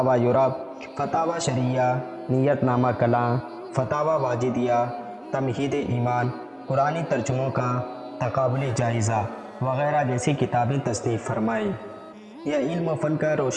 یورپ، فتاوی شریعہ، نیت نامہ کلاں، فتاوی واجدیہ، تمہید ایمان، قرآنی ترجموں کا تقابلی جائزہ وغیرہ جیسی کتابیں تصنیف فرمائی۔ یہ علم و فن کا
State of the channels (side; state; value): both; identical; correlation 1.00